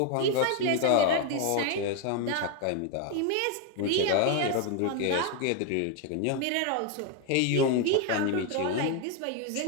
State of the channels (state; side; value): different; both; correlation 0.01